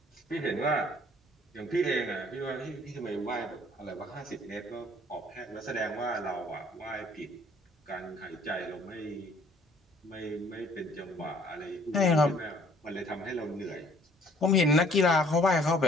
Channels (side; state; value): both; normal; correlation 0.58